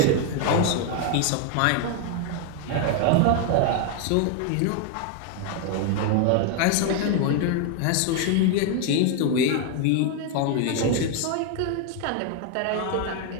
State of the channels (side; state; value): both; different; correlation 0.01